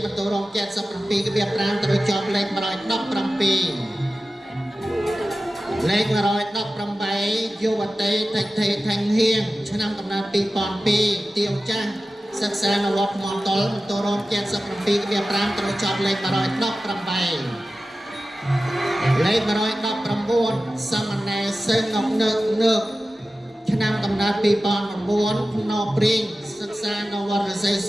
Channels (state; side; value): normal; both; correlation 0.94